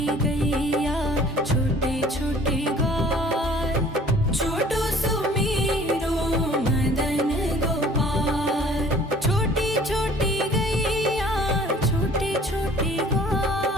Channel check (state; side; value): normal; both; correlation 0.52